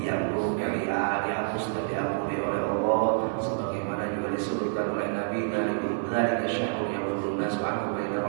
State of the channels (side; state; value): left; silent; 59 dB below the other